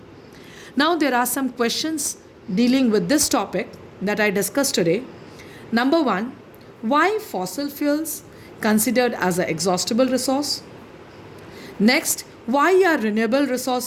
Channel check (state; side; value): identical; both; correlation 1.00